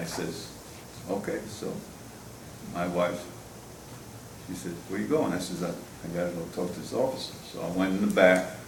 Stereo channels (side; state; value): both; identical; correlation 1.00